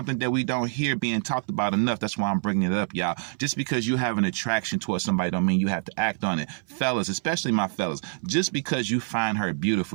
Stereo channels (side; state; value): left; silent; 60 dB below the other